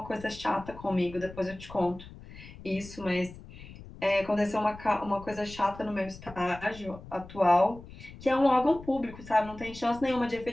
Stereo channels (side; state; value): left; noise; rumble, 16 dB below the sound